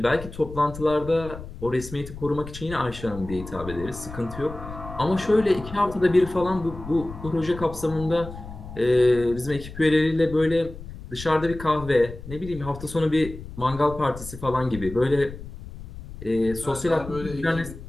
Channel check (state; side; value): noise; left; rumble, 13 dB below the sound